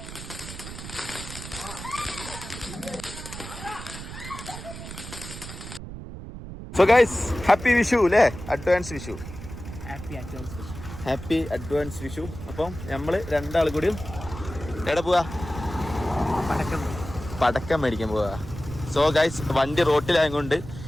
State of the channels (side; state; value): right; noise; rumble, 11 dB below the sound